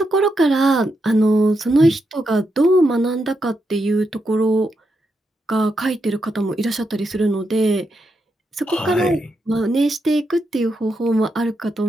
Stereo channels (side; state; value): both; normal; correlation 0.83